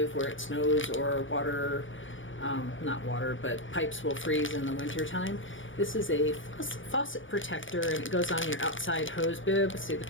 where it snows or water, not water, but pipes will freeze in the wintertime. This is a faucet protector, and it goes on your outside hose bib. See the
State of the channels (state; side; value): late; right; 0.57 ms